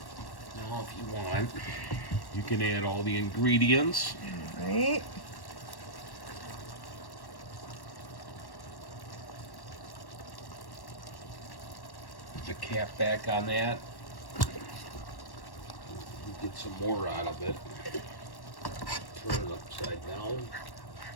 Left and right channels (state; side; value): late; right; 1.1 ms